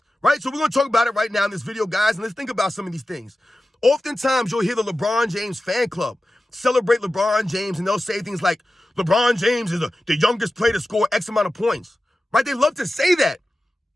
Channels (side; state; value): both; normal; correlation 0.94